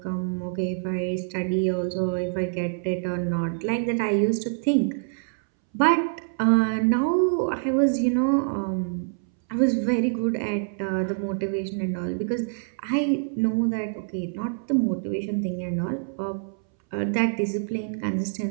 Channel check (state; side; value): silent; left; 61 dB below the other